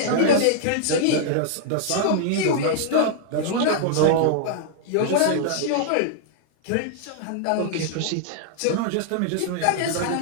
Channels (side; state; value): both; different; correlation -0.01